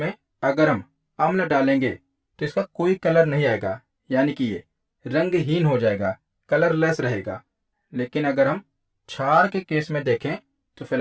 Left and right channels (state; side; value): identical; both; correlation 1.00